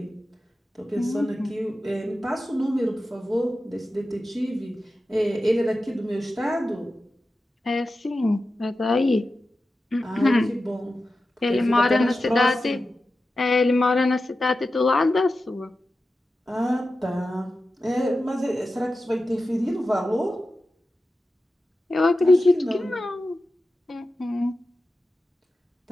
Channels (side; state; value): both; normal; correlation 0.92